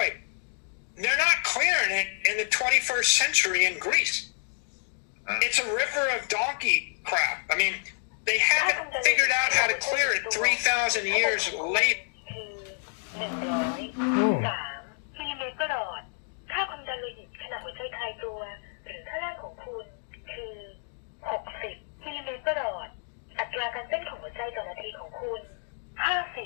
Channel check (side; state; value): right; silent; 59 dB below the other